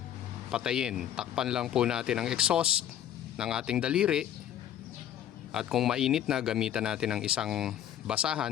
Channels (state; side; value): quieter; right; 10.9 dB